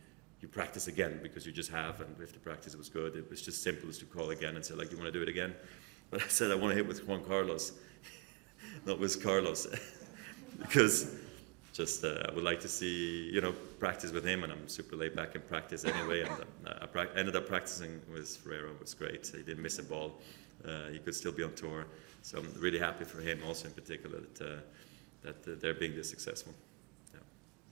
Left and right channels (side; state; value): left; quieter; 31.0 dB